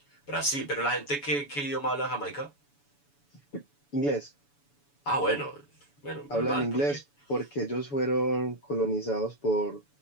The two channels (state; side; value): late; right; 7.0 ms